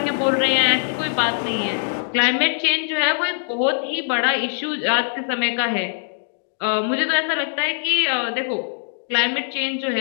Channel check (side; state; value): right; silent; digital silence